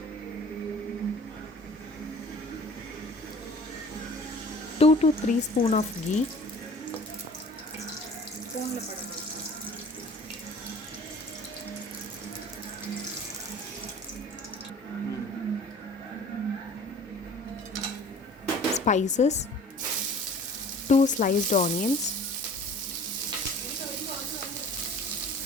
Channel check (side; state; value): both; normal; correlation 0.47